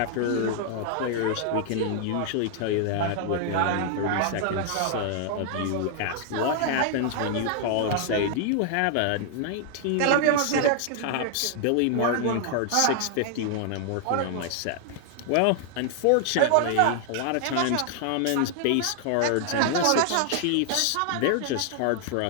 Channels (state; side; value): different; both; correlation 0.00